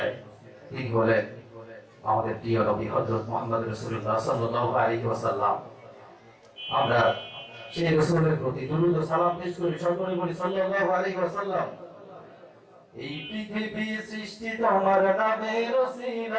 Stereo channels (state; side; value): identical; both; correlation 1.00